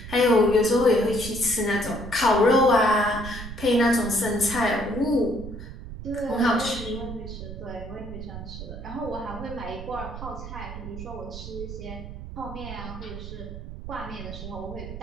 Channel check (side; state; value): right; noise; rumble, 10 dB below the sound